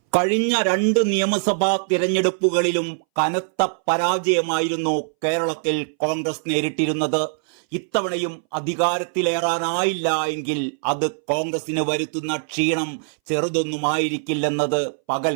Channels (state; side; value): silent; left; 62 dB below the other